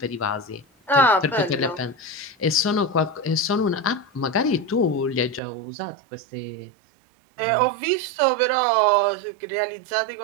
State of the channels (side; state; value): left; drops out; at 5.4 s